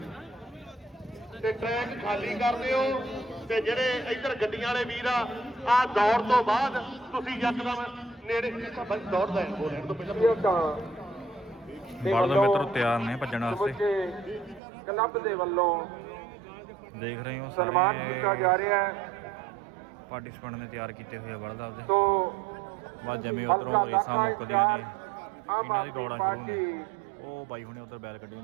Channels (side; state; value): left; drops out; at 14.6 s